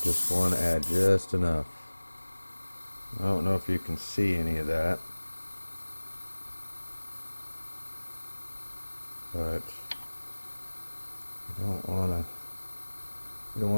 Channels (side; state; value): both; inverted; correlation -1.00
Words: want to add just enough. I don't know if you can see any of that, but we don't want